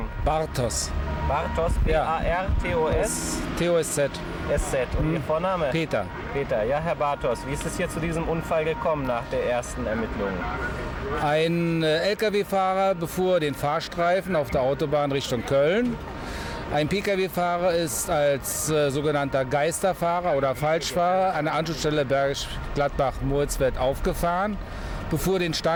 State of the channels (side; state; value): both; identical; correlation 1.00